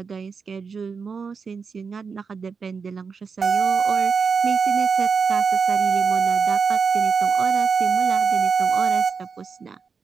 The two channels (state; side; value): quieter; left; 5.4 dB